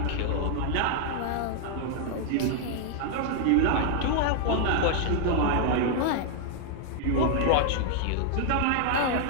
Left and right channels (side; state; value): both; different; correlation 0.00